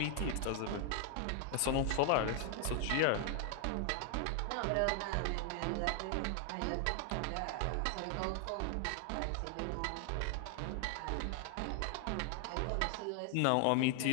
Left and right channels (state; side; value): different; both; correlation 0.00